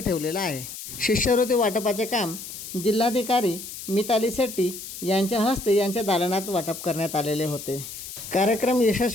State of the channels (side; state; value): left; noise; hiss, 11 dB below the sound